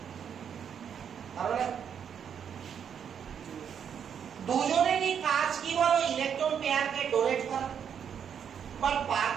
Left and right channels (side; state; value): left; quieter; 7.9 dB